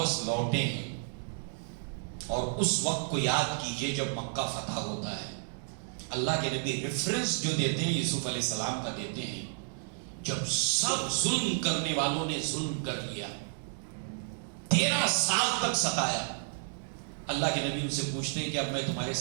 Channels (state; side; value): silent; left; digital silence